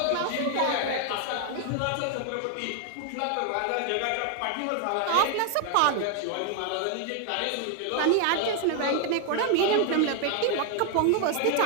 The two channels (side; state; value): both; different; correlation 0.00